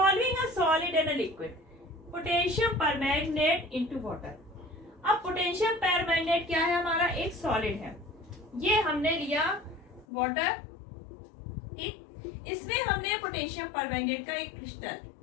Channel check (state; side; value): drops out; right; at 10.1 s